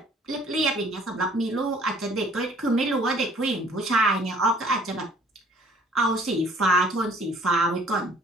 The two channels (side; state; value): both; normal; correlation 0.56